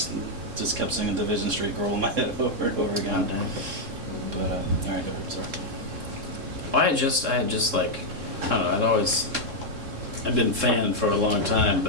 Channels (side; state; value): left; late; 3.7 ms